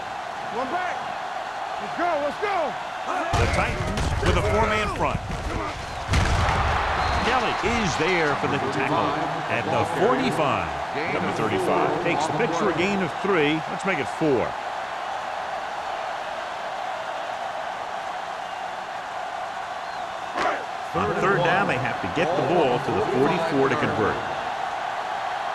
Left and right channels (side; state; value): both; identical; correlation 1.00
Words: One back. Let's go. The Titans with a four-man front. Kelly is there for the tackle at the 45. Number 35 takes the pitch for a gain of 3. Let's make it 4. On third down, they have to get the ball to the 44 to convert.